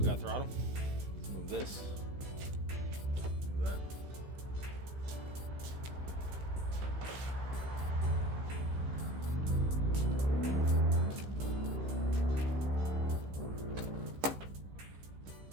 We got throttle. Let's move this. Move that.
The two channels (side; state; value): left; late; 15 ms